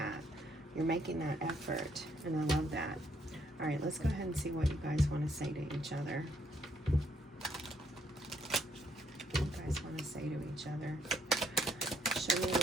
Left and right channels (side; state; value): both; normal; correlation 0.70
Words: You're making that effort, and I love that. All right, let's go ahead and see what you guys want to say to each other. What you guys want to say to each other. Show me